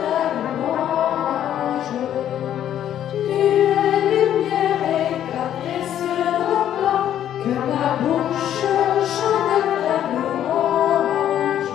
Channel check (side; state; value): right; quieter; 10.8 dB